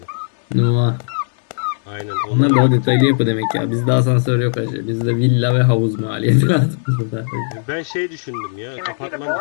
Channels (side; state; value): right; silent; 68 dB below the other